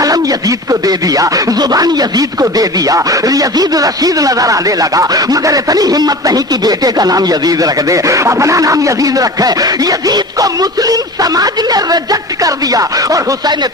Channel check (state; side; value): normal; both; correlation 0.35